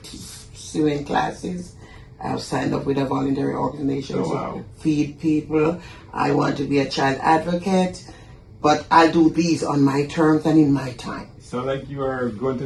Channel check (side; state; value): both; identical; correlation 1.00